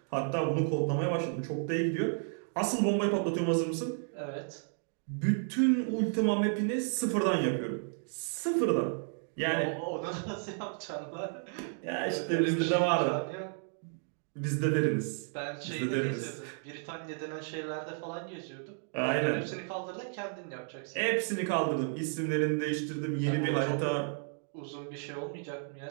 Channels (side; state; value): left; silent; 56 dB below the other